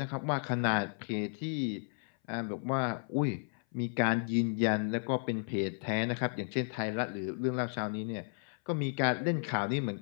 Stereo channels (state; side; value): silent; right; 55 dB below the other